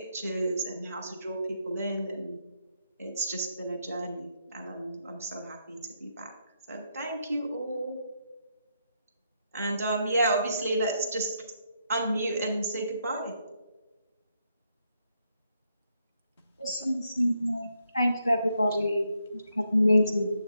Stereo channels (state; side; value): inverted; both; correlation -0.78